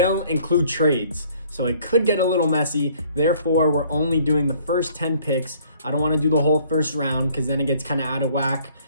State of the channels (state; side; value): inverted; both; correlation -0.58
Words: include trades. So it could get a little messy. Therefore, we're only doing the first 10 picks. I don't want to do the whole first round because then it gets kind of out of whack,